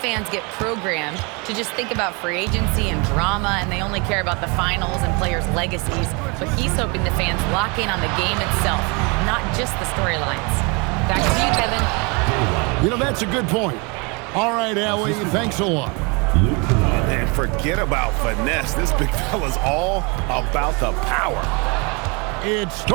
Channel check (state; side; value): quieter; left; 30.4 dB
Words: get programmed to just think about free agency and drama, and they only care about the finals and players' legacies. But he's hoping the fans lock in on the game itself, not just the storylines. Back to you, Kevin. You know, that's a good point. All right, Allie, thanks a lot. And forget about finesse. This big fella's all about the power. It's